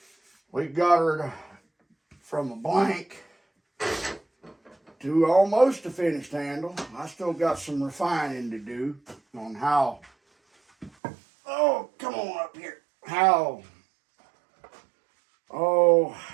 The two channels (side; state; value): left; drops out; at 10.9 s